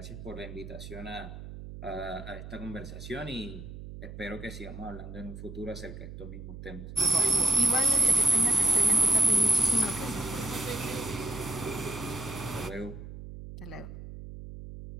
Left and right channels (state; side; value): noise; right; hum, 12 dB below the sound